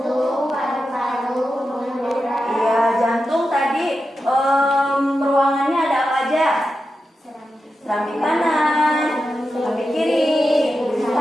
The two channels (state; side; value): normal; both; correlation 0.90